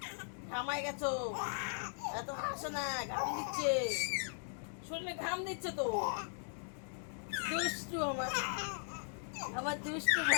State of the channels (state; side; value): silent; right; digital silence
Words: ঘামাই গেছো, এত হাসো না, ঘাম দিচ্ছে, শরীরে ঘাম দিচ্ছে তো। দুষ্টু আমার, আমার দুষ্টু